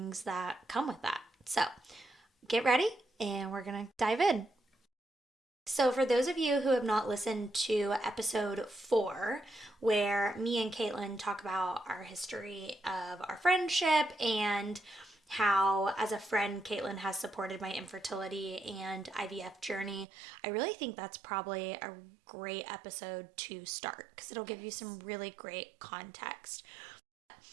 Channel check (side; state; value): left; drops out; at 20.1 s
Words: that come with that. So get ready, and we're going to dive in. So for those of you who have not listened to episode 4, where me and Caitlin talk about our history of our friendship and how, as a friend, Caitlin has supported my infertility and IVF journey, I really think that's probably a great episode to start because it'll give you some really great context.